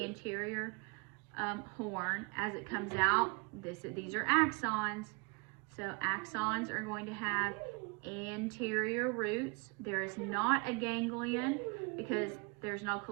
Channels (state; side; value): quieter; left; 31.5 dB